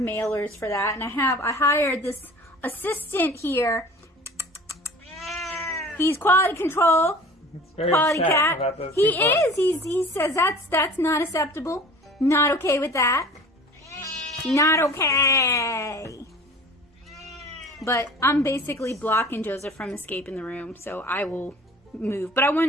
for that. And I hired this assistant here. He's quality control. It's very Quality upset cat. about those He two books. is. He says that's not acceptable. Not okay with that. Not okay. But I'm basically blocking Joseph from escaping the room, so I will move. But I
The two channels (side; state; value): both; normal; correlation 0.43